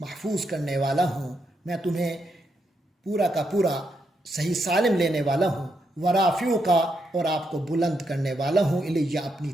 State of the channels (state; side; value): normal; both; correlation 0.81